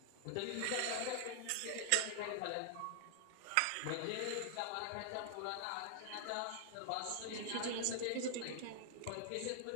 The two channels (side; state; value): both; different; correlation -0.01